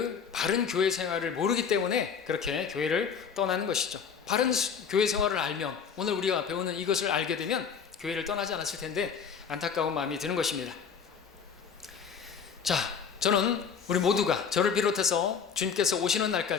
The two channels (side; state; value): right; quieter; 6.6 dB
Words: 바른 교회 생활을 모르기 때문에 그렇게 교회를 떠나는 것이죠. 바른 교회 생활을 알면, 오늘 우리가 배우는 이것을 알게 되면 교회를 떠나지 않았을 텐데 안타까운 마음이 드는 것입니다. 자, 저는 우리 모두가, 저를 비롯해서 주님께서 오시는